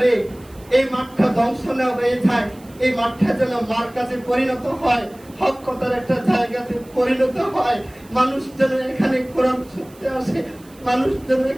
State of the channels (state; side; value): noise; right; hiss, 26 dB below the sound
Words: এই মাঠটা ধ্বংস না হয়ে যায়, এই মাঠটা যেন মার কাছে পরিণত হয়, হক কথার একটা জায়গাতে পরিণত হয়। মানুষ যেন এখানে কোরআন শুনতে আসে, মানুষ যেন